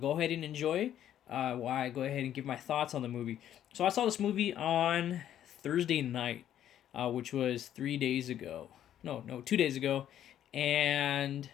ahead and enjoy. While I go ahead and give my thoughts on the movie. So I saw this movie on Thursday night, which was 3 days ago. No, 2 days ago, and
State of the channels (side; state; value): right; quieter; 10.9 dB